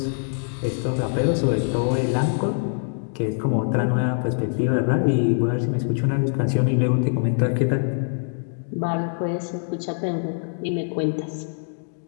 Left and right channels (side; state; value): right; silent; digital silence